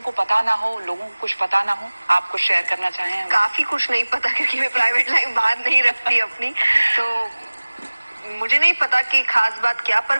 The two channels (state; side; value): inverted; both; correlation -1.00